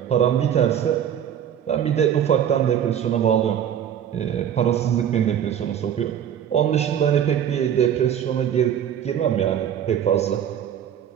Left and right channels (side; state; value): left; quieter; 9.4 dB